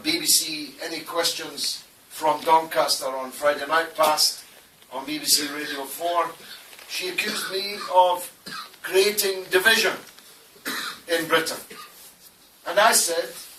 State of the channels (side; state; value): both; identical; correlation 1.00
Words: BBC Any Questions from Doncaster on Friday night past, on BBC Radio 4, she accused me of creating division in Britain. And I said,